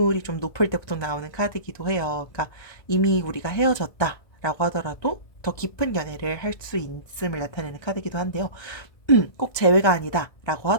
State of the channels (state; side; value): late; right; 1.2 ms